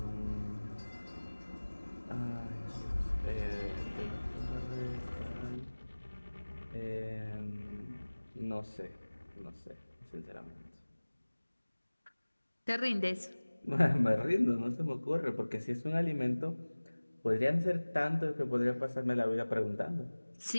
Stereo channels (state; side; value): inverted; both; correlation -1.00